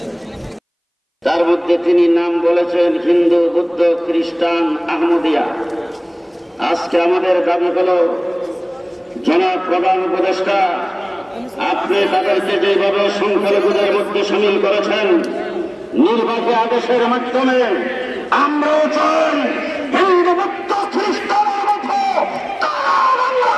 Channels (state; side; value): identical; both; correlation 1.00